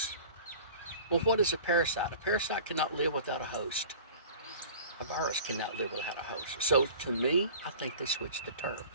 Well, what is a parasite? A parasite cannot live without a host. A virus cannot live without a host. So to me, I think they switched the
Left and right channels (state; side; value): inverted; both; correlation -0.42